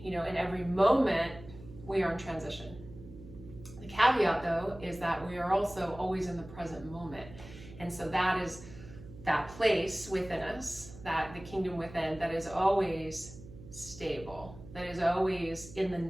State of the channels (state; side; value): noise; right; hum, 16 dB below the sound